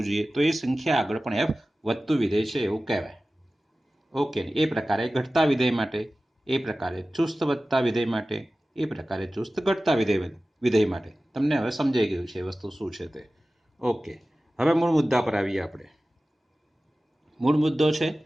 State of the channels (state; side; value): normal; both; correlation 0.96